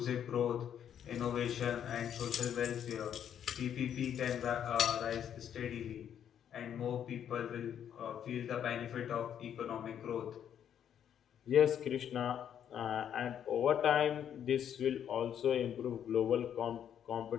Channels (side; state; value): right; quieter; 9.3 dB